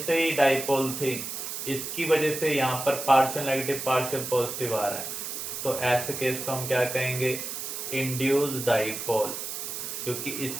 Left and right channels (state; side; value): noise; right; hiss, 6 dB below the sound